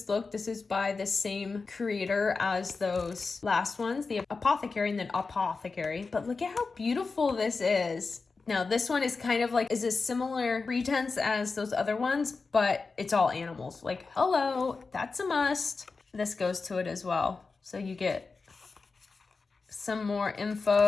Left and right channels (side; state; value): right; quieter; 4.3 dB